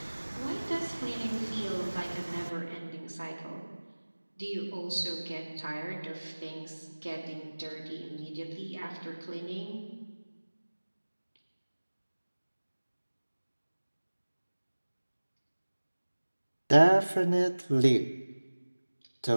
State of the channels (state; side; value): inverted; both; correlation -1.00